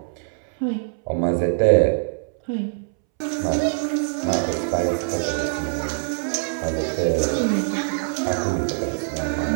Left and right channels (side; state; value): left; silent; 63 dB below the other